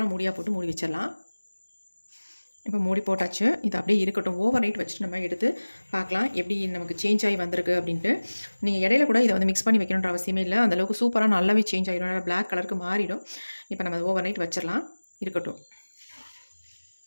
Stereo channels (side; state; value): both; inverted; correlation -1.00